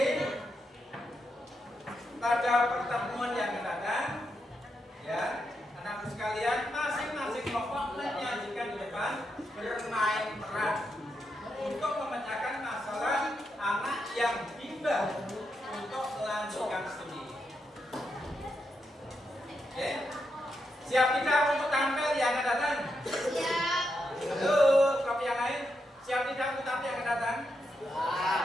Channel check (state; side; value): normal; both; correlation 0.84